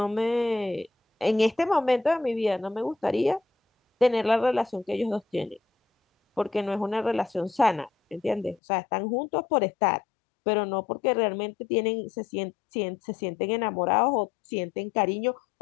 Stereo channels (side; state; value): right; drops out; at 8.6 s